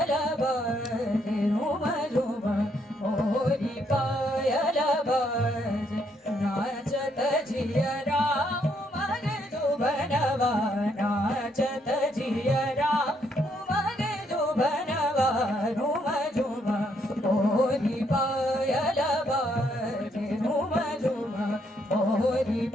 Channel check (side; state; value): both; normal; correlation 0.73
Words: बाजे झुम झुम मोरी पायल बाजे नाचत जियरा उमग जुबनवा नाचत जियरा उमग जुबनवा झुम झुम मोरी पायल बाजे झुम झुम मोरी